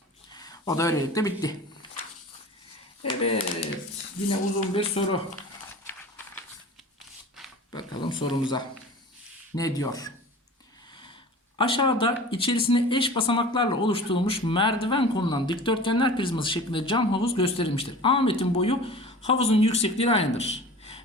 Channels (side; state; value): both; normal; correlation 0.39